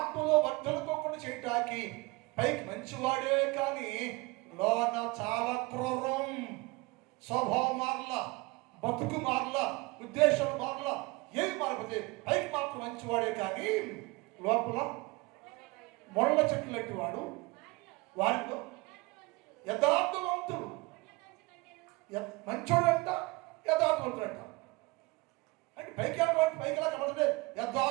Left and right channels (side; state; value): left; quieter; 24.7 dB